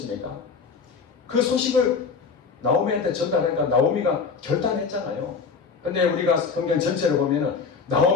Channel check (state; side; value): quieter; right; 5.3 dB